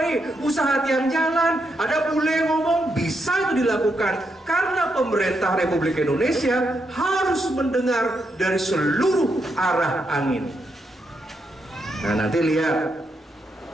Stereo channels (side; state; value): both; normal; correlation 0.81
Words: usaha tiang jalan. Ada bule ngomong, bisa itu dilakukan. Karena pemerintah Republik Indonesia harus mendengar dari seluruh arah angin. Nah, nanti lihat